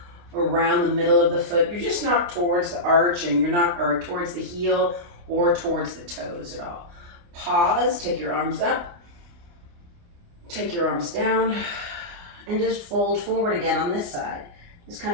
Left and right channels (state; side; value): late; left; 29 ms